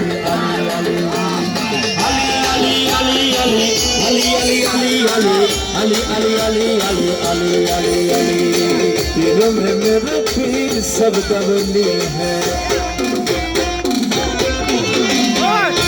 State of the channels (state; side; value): identical; both; correlation 1.00